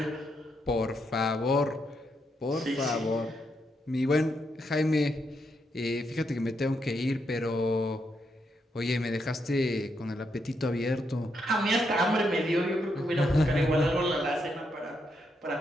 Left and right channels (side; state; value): both; normal; correlation 0.80